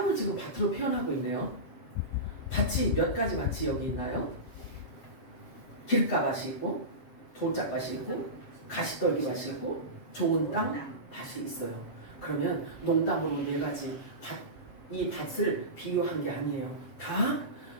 지금 밭으로 표현하고 있네요. 밭이 몇 가지 밭이 여기 있나요? 길가밭이 있고, 돌짝밭이 있고, 가시떨기밭이 있고, 좋은 땅 밭이 있어요. 그러면 농담으로 4가지 밭, 이 밭을 비유한 게 아니에요. 다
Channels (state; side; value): late; right; 7.5 ms